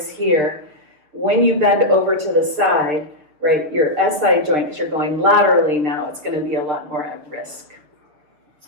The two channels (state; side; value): late; left; 6.7 ms